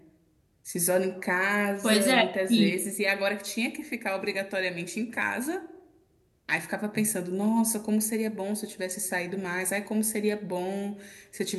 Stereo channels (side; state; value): both; identical; correlation 1.00